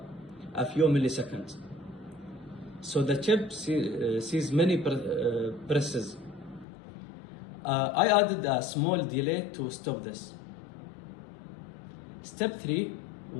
a few milliseconds. So the chip sees many presses. I added a small delay to stop this. Step 3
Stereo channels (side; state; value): right; drops out; at 6.7 s